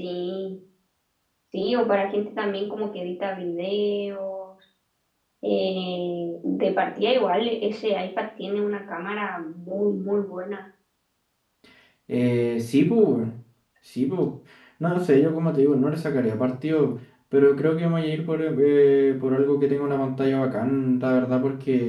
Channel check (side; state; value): both; identical; correlation 1.00